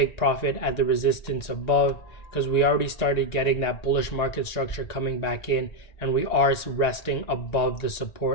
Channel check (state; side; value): late; right; 1.9 ms